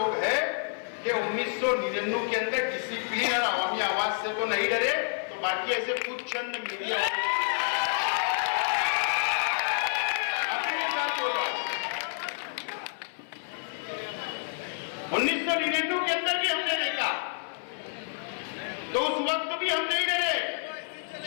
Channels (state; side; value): silent; right; 55 dB below the other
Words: हैं कि 1999 के अंदर डिसिप्लिन और अवामी आवाज से तो नहीं डरे, तो बाकी ऐसे कुछ चंद मीडिया वाले 1999 के अंदर भी हमने देखा, तो उस वक्त भी हम नहीं डरे,